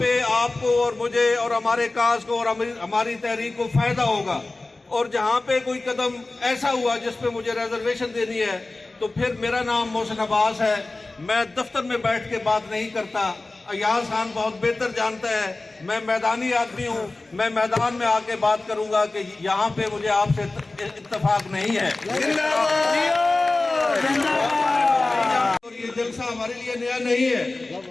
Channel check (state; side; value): quieter; right; 3.2 dB